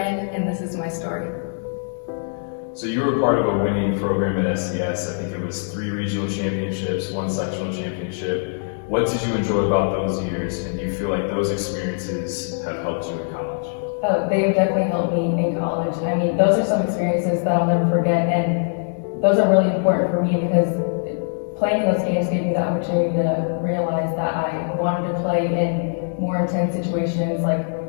and this is my story. So you were part of a winning program at SCS. I think it was 3 regional championships, 1 sectional championship. What did you enjoy about those years, and do you feel like those experiences have helped you in college? Oh, they definitely helped me in college. I mean, those are some experiences that I'll never forget, and those are really important for me because playing those games gave me the opportunity to realize that I wanted to play in more intense situations like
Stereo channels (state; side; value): silent; right; digital silence